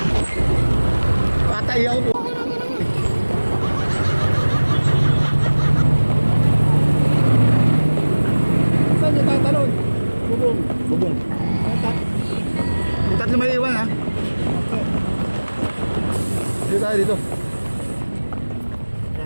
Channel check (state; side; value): inverted; both; correlation -1.00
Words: Patay ako po. Saan niyo tatalon? Bubong. Bubong. Yung tatlo may iwan ha. Dito tayo dito.